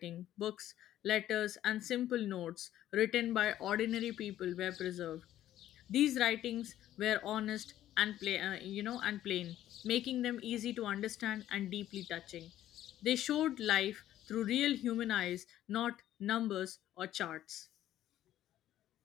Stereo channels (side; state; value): right; quieter; 12.7 dB